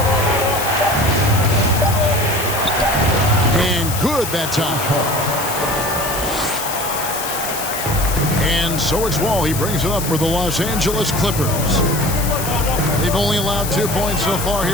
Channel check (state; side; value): noise; left; hiss, 6 dB below the sound